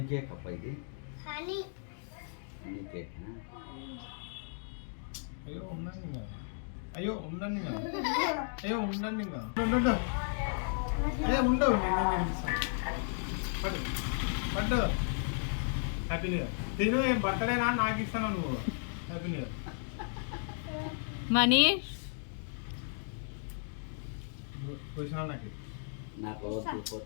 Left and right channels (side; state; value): right; silent; digital silence